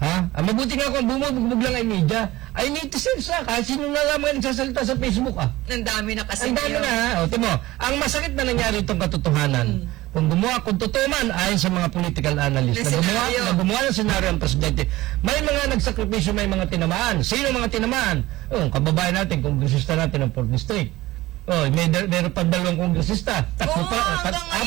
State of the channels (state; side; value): quieter; left; 17.9 dB